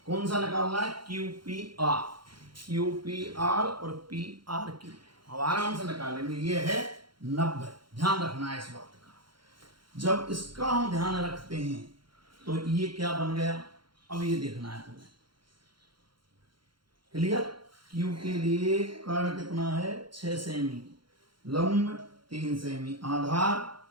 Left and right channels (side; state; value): left; late; 0.73 ms